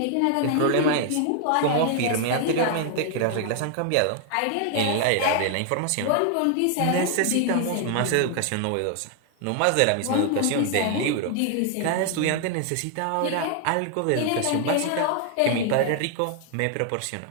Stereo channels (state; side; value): different; both; correlation 0.00